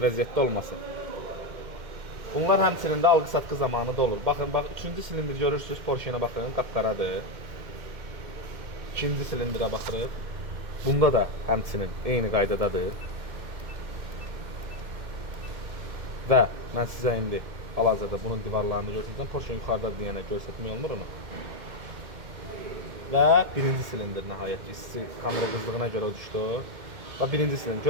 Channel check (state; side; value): late; left; 2.1 ms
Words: vəziyyətdə olması. Bunlar həmçinin də alqı-satqı zamanı da olur. Baxın, bax, 3-cü silindir görürsünüz, Porsche'yə baxın, qapqaradır. 2-ci silindirə baxırıq. Bunda da həmçinin eyni qaydadadır. Və mən sizə indi hal-hazırda bunun divarlarını göstərsəm, Porsche yuxarıda deyənə göstərmək olmur onu. Və birinci silindir nəhayət ki, kamera qızdığına görə o düşdü. Və birinci silindir.